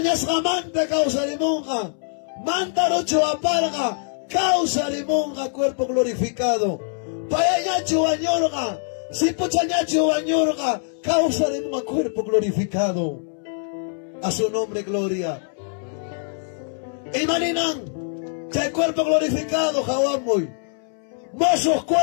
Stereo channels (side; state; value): right; silent; 63 dB below the other